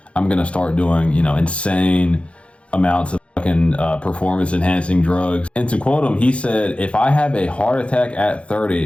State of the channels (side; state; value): right; late; 0.061 ms